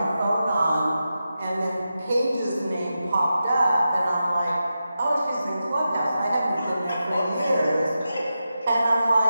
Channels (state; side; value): inverted; both; correlation -0.90